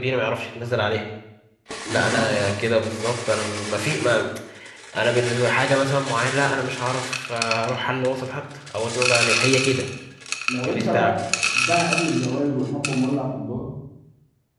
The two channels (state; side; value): identical; both; correlation 1.00